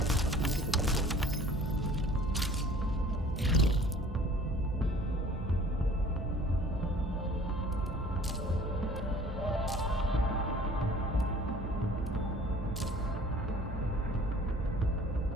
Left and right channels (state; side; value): normal; both; correlation 0.50